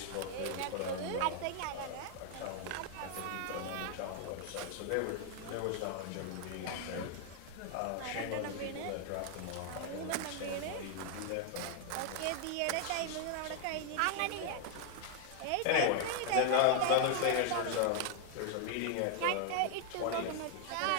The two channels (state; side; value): different; both; correlation 0.00